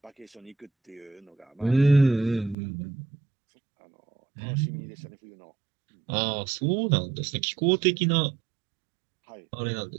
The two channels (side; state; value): left; drops out; at 2.6 s